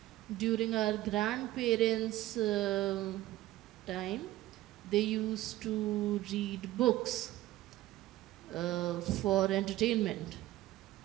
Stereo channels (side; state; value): left; quieter; 15.9 dB